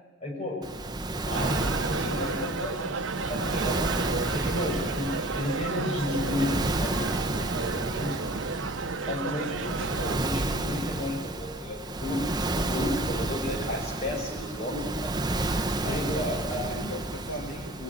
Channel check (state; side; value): normal; both; correlation 0.45